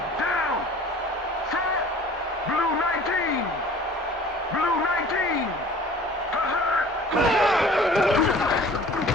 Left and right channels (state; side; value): normal; both; correlation 0.47